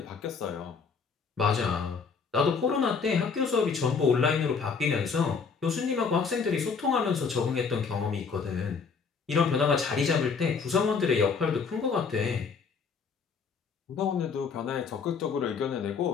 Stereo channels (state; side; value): quieter; right; 5.4 dB